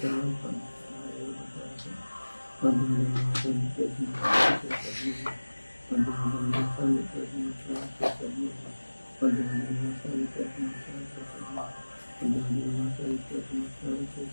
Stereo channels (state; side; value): inverted; both; correlation -1.00